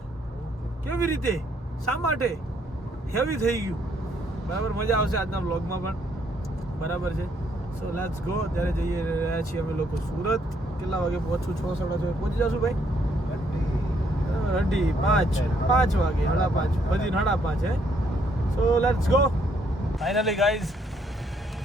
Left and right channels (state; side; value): normal; both; correlation 0.70